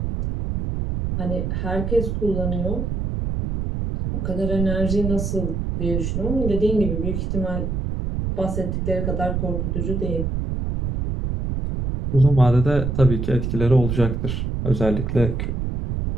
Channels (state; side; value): noise; right; rumble, 2 dB below the sound